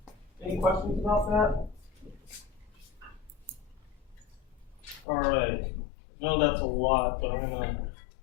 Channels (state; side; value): drops out; right; at 5.1 s